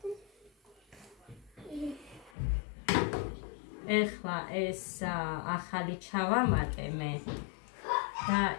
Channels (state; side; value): drops out; right; at 2.3 s